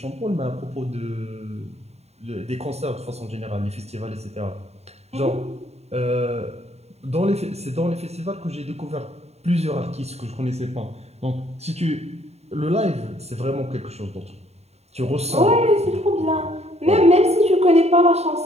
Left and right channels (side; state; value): left; late; 0.31 ms